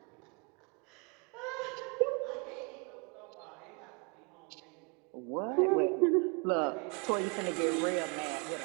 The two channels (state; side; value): quieter; left; 33.4 dB